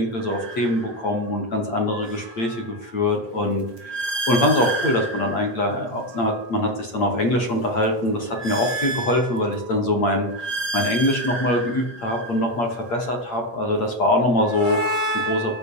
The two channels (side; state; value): right; late; 8.6 ms